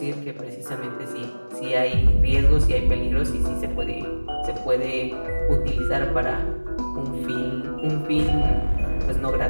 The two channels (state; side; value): inverted; both; correlation -1.00